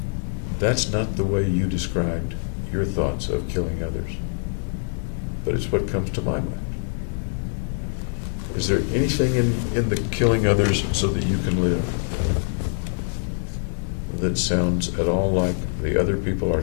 That's not the way you described your thoughts of killing others, but it's what comes to my mind. Is there anything in the killing others so that you can live that sounds at all like the other people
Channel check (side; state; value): right; silent; digital silence